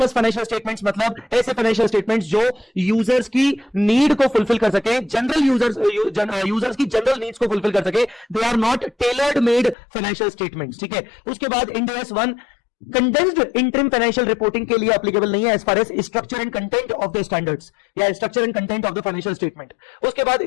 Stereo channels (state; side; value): drops out; right; at 9.8 s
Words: फाइनेंशियल स्टेटमेंट्स मतलब ऐसे फाइनेंशियल स्टेटमेंट्स जो यूजर्स की नीड को फुलफिल कर सके, जनरल यूजर्स की जनरल नीड्स को फुलफिल कर सके. They are not tailored made financial statements. ठीक है. उसके बाद Ind AS 1 condensed interim financial reporting के लिए एप्लीकेबल नहीं है as far as structure and content of the standards या structure and content of the financial statement. उसके बाद